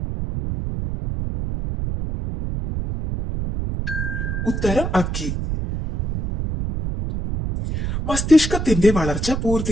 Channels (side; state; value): right; noise; rumble, 3 dB below the sound